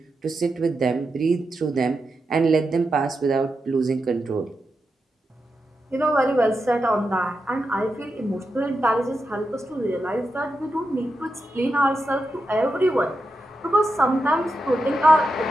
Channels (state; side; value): normal; both; correlation 0.88